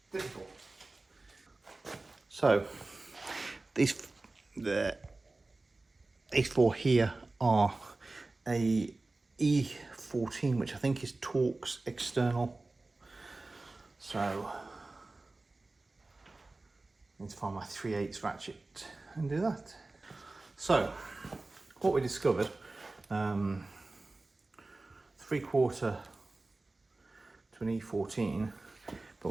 Difficult. So these 4 here are a E14, which I think is Torx external. So I need to find my 3/8 ratchet and do that. So what we discovered, 3/4 to an E14, but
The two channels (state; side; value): quieter; left; 3.2 dB